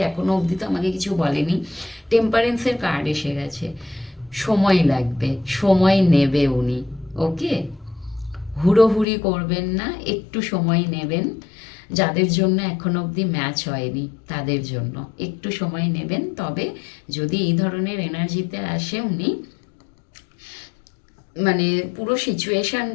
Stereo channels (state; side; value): drops out; right; at 9.1 s